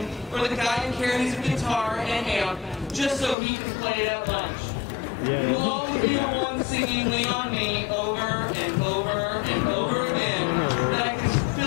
or the guy who carries a guitar and amp just so he can play it at lunch. You will always be the one singing Lean on Me over and over and over again that I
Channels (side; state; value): right; drops out; at 3.4 s